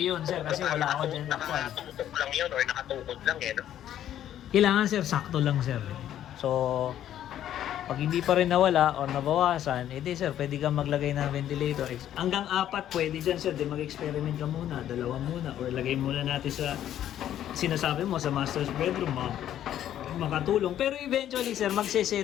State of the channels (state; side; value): quieter; right; 11.3 dB